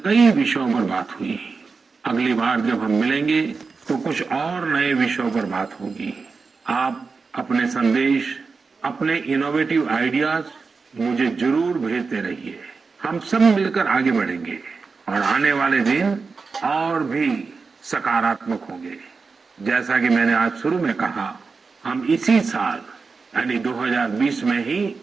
विषयों पर बात हुई। अगली बार जब हम मिलेंगे तो कुछ और नए विषयों पर बात होगी। आप अपने संदेश, अपने इनोवेटिव आइडियाज मुझे जरूर भेजते रहिए। हम सब मिलकर आगे बढ़ेंगे और आने वाले दिन और भी सकारात्मक होंगे। जैसा कि मैंने आज शुरू में कहा, हम इसी साल यानी 2020 में ही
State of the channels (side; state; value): left; quieter; 4.6 dB